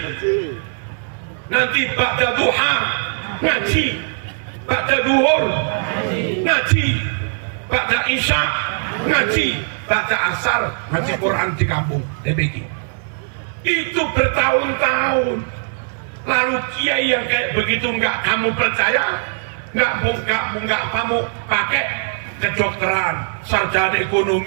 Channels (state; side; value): silent; left; digital silence